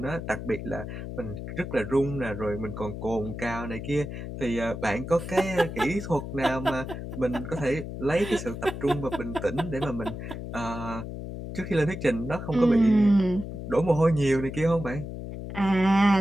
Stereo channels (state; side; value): noise; left; hum, 8 dB below the sound